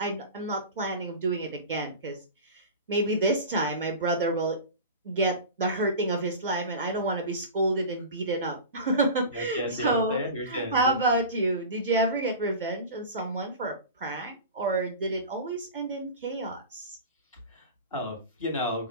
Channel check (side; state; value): both; inverted; correlation -0.32